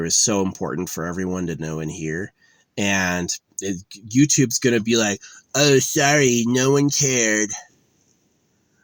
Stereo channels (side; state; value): both; identical; correlation 1.00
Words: is so important for everyone to know and hear. And YouTube's going to be like, oh, sorry, no one cared.